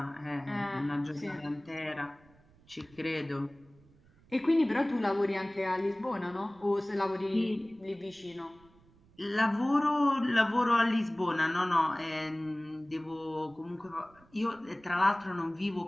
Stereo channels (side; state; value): right; noise; rumble, 28 dB below the sound